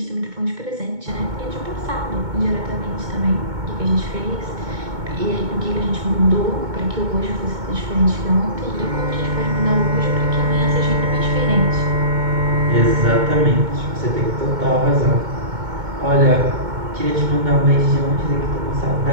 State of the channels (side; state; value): left; late; 2.2 ms